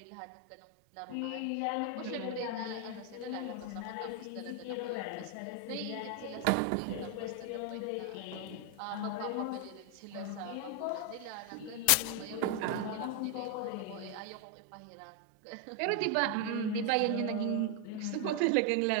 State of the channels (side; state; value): both; different; correlation 0.00